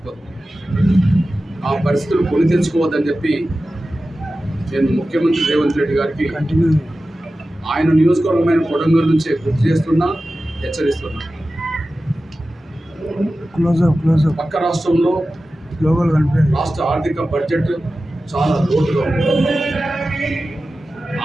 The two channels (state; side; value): normal; both; correlation 0.94